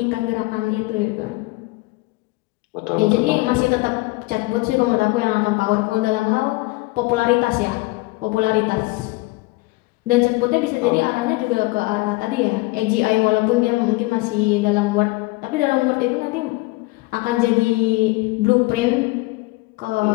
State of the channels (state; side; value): quieter; right; 23.0 dB